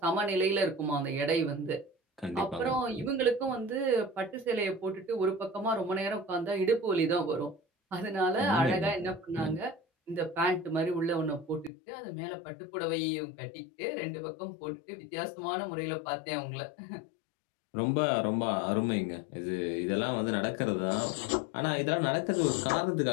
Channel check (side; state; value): right; drops out; at 11.7 s